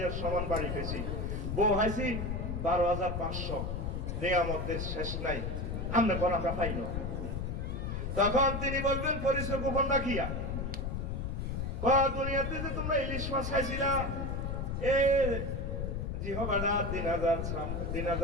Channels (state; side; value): noise; left; rumble, 3 dB below the sound